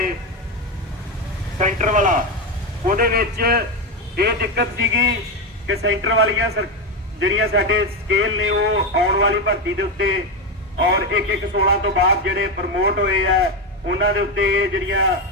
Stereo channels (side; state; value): both; normal; correlation 0.11